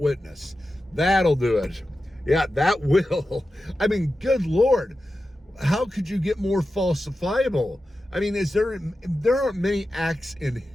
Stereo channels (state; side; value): normal; both; correlation 0.92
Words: That'll do it. Yeah, that will. I mean, good Lord, how could you get more falsifiable? I mean, there aren't many acts in